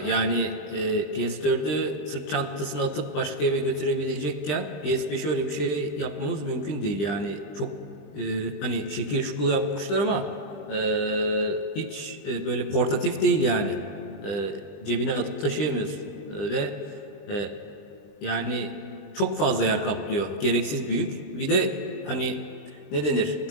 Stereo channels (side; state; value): right; late; 20 ms